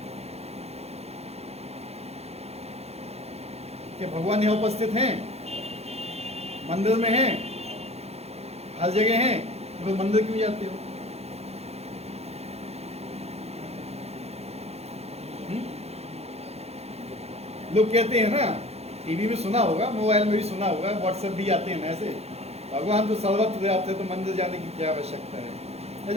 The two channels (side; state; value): left; late; 0.30 ms